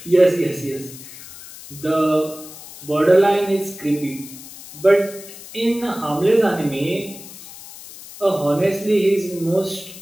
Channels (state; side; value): noise; left; hiss, 16 dB below the sound